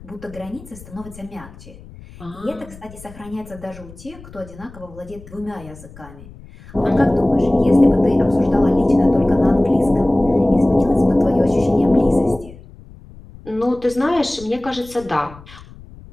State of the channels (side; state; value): left; noise; rumble, 19 dB below the sound